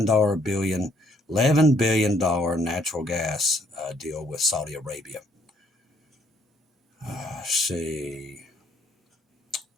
billion natural gas deal with Saudi Arabia. Let's see.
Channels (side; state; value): both; normal; correlation 0.66